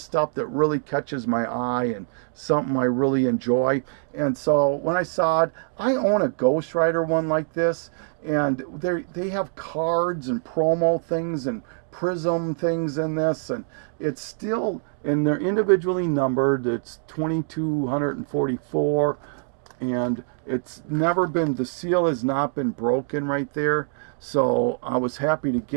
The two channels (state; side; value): silent; left; digital silence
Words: that really catches my eye and something I really enjoy. And so when I saw it, I own a Ghost Rider one like this, and they have cards and promo things and prism things in this, and it's still, and they're individually numbered. It's 2244, and it's never been, the seal has not been broken right there. So I was happy to